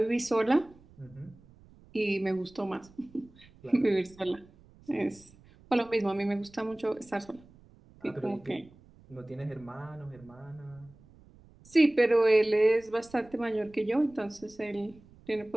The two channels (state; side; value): noise; right; rumble, 25 dB below the sound